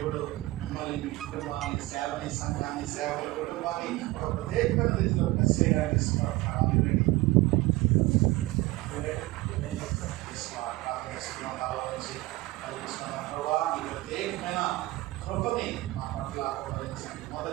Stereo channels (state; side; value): quieter; left; 19.2 dB